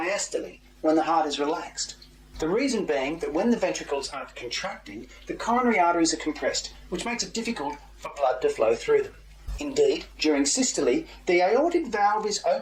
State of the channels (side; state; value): both; identical; correlation 1.00